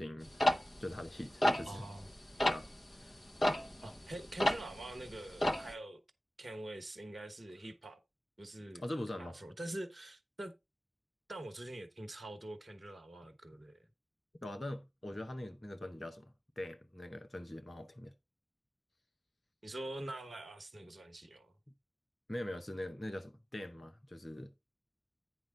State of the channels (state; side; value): normal; both; correlation 0.96